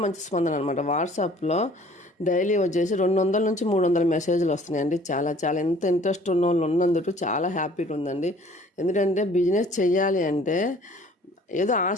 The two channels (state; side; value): normal; both; correlation 0.53